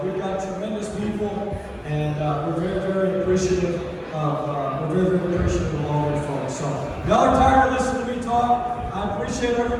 we've got tremendous people, and we're very appreciative of all these folks. So y'all are tired of listening to me talk. I appreciate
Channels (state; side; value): identical; both; correlation 1.00